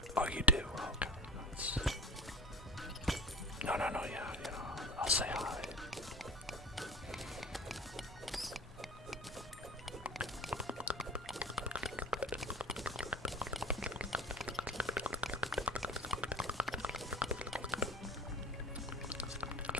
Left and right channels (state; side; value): normal; both; correlation 0.37